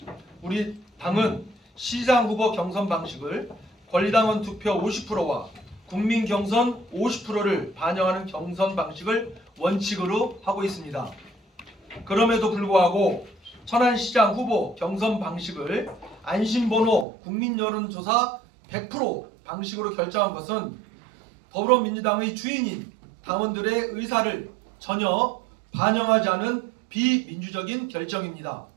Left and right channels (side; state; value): left; drops out; at 17.1 s